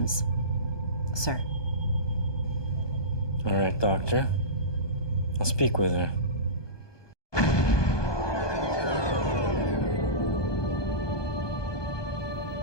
sir. All right, Doctor. I'll speak with her.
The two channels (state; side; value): late; right; 1.2 ms